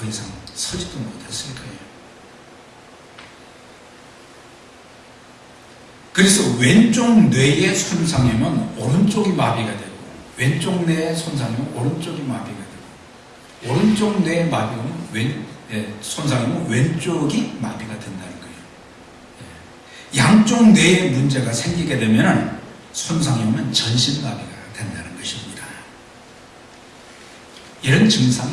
이상 서지도 못했을 거예요. 그래서 왼쪽 뇌의 손상이면 오른쪽이 마비가 되고, 왼쪽 뇌의 손상이면 오른쪽이 마비가 되고, 오른쪽 뇌의 마비면 손상이면 왼쪽이 마비가 된다는 거예요. 양쪽 뇌에 문제가 생기게 되면 손상이 오면 전신마비가 된다는 것입니다. 이런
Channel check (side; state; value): both; identical; correlation 1.00